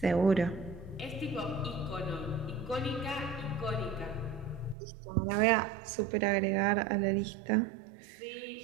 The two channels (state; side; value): drops out; left; at 4.8 s